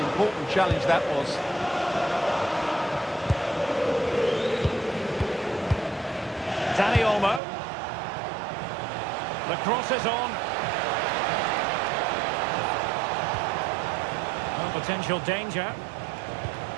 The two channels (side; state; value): left; drops out; at 7.4 s